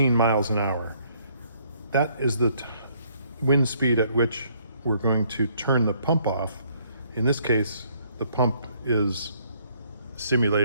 miles an hour. That is the wind speed at which we're going to turn the pump off. In this case, the pump is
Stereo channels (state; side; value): inverted; both; correlation -0.66